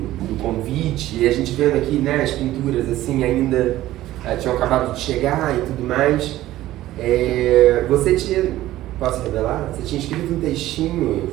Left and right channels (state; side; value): quieter; left; 15.0 dB